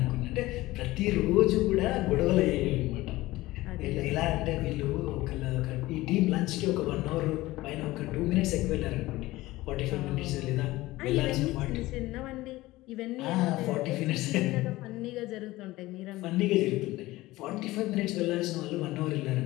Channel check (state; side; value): quieter; right; 18.4 dB